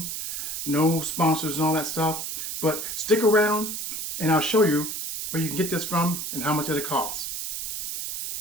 No sponsors and all that stuff. But stick around and I'll show you where you can get this from and how much it costs.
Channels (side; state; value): right; noise; hiss, 5 dB below the sound